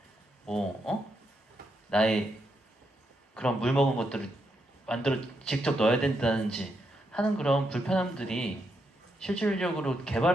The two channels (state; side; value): normal; both; correlation 0.81